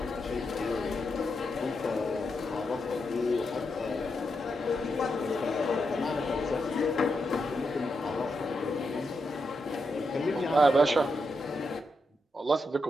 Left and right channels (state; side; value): normal; both; correlation 0.84